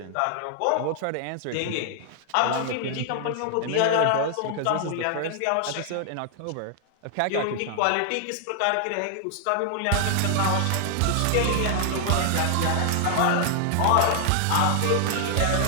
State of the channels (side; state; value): both; different; correlation 0.00